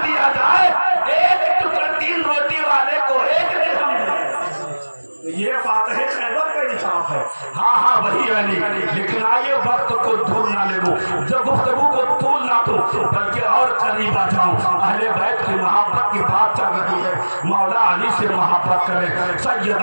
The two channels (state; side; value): inverted; both; correlation -1.00